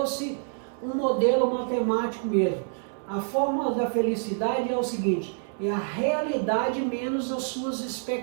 um modelo matemático mesmo. A fórmula da felicidade é o seguinte, é a realidade menos as suas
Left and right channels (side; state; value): left; silent; 60 dB below the other